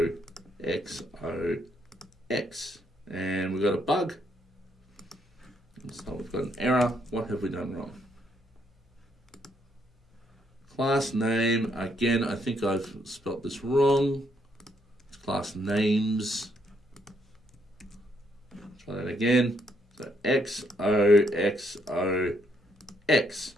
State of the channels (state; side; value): normal; both; correlation 0.73